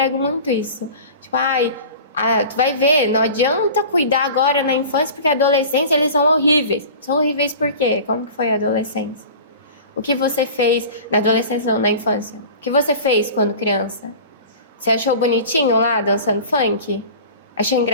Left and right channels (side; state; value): both; inverted; correlation -0.39